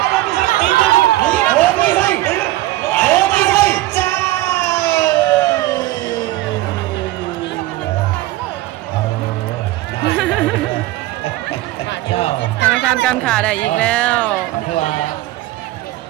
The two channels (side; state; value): left; quieter; 17.1 dB